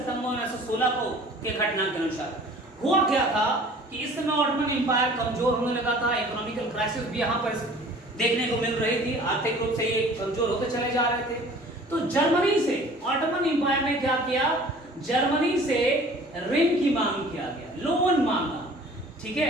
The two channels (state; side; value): normal; both; correlation 0.48